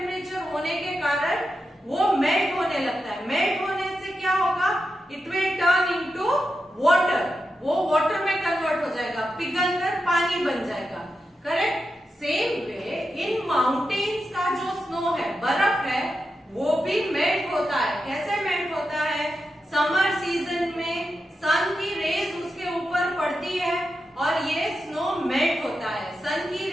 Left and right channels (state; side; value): normal; both; correlation 0.88